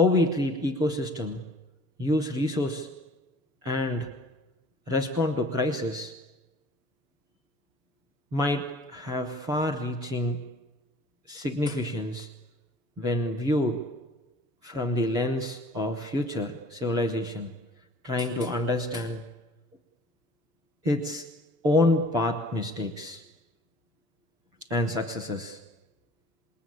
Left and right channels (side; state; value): left; late; 6.8 ms